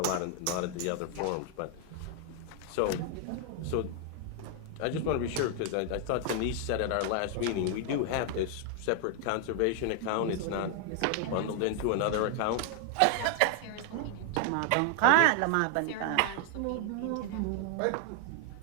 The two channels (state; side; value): different; both; correlation 0.00